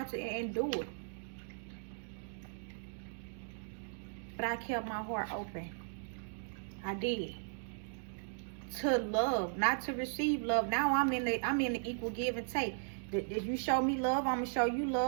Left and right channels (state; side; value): silent; left; digital silence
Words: and endured. But I kept my heart open. I did. To love, not to receive love. Now I'm in the equal give and take. If you show me love, I'm gonna show you